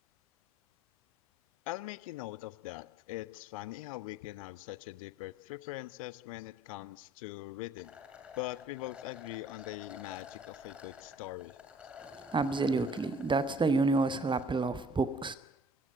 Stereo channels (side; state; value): both; normal; correlation 0.57